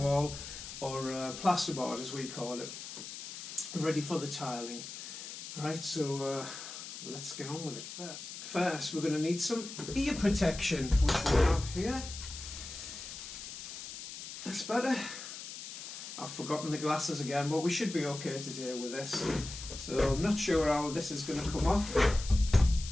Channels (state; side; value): noise; left; hiss, 10 dB below the sound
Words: or plasterboard as we call it, ready for the tiling. Right, so let's get on with it first. First we're going to need some ear protection, which we have here. That's better. I've forgotten the glasses again, but we should be okay to deal with this. So I'm not sure how this is going to come off.